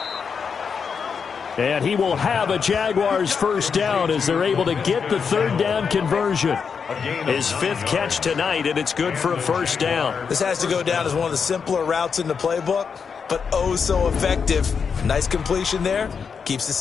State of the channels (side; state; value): right; quieter; 6.1 dB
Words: And he will have a Jaguars 1st down as they're able to get the 3rd down conversion. His 5th catch tonight, and it's good for a 1st down. This has to go down as one of the simpler routes in the playbook, but oh so effective. Nice completion there. Keeps the